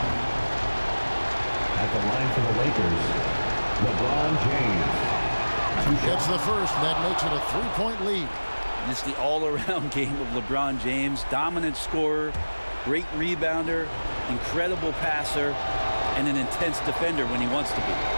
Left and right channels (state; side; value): inverted; both; correlation -1.00